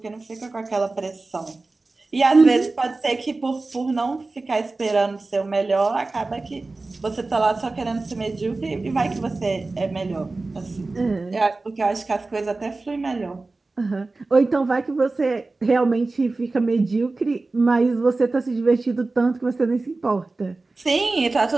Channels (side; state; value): left; quieter; 3.4 dB